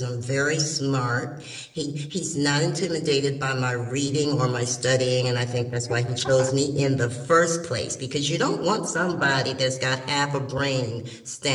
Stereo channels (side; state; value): both; identical; correlation 1.00